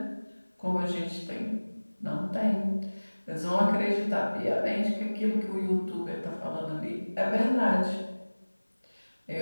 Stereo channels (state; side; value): inverted; both; correlation -1.00